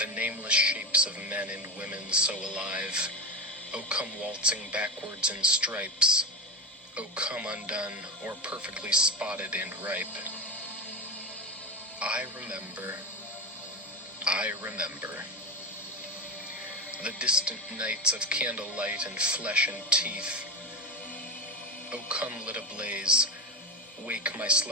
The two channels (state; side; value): normal; both; correlation 0.19